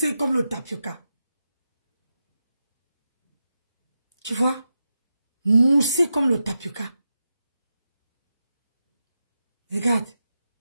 comme le tapioca. Tu vois? Mousser comme le tapioca. Regarde,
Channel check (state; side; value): inverted; both; correlation -0.90